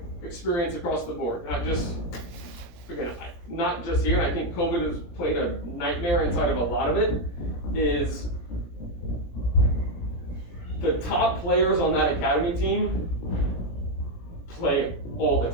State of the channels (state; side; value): late; right; 17 ms